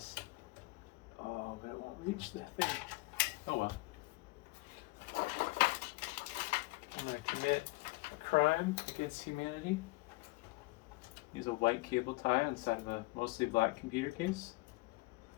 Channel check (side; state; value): right; quieter; 23.5 dB